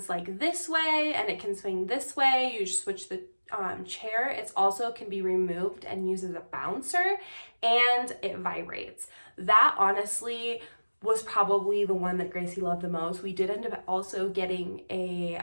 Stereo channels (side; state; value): both; inverted; correlation -1.00